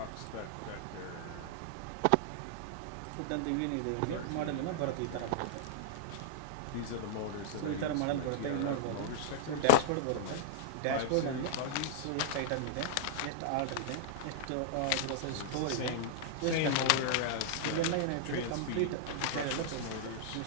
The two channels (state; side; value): different; both; correlation -0.01